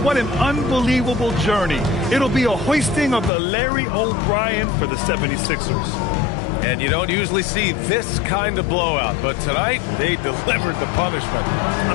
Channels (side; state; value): right; drops out; at 3.3 s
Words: what an unbelievable journey. It'll be a hoisting of the Larry O'Brien for the 76ers. And you don't usually see this kind of blowout, but tonight they delivered the punishment.